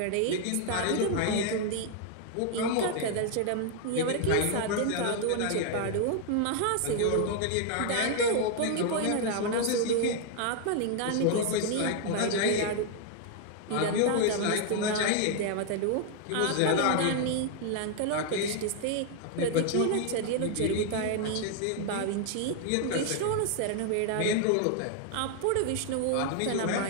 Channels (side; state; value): both; different; correlation 0.00